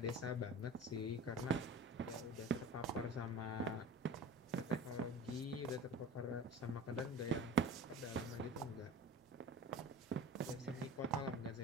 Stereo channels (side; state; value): both; normal; correlation 0.37